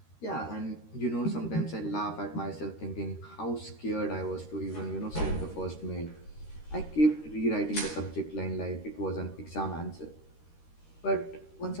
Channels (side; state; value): right; late; 13 ms